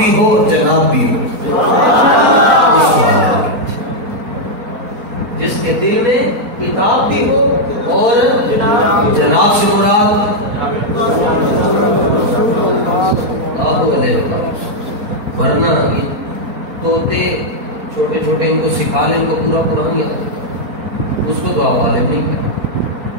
ہو اور جناب بھی ہو. جس کے دل میں کتاب بھی ہو اور جناب سے مراد ورنہ طوطے چھوٹے چھوٹے ان کو سکھا لیں، ان کو پورا قرآن یاد ہے، اس کو تو آپ عالم نہیں کہتے.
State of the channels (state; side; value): late; left; 4.3 ms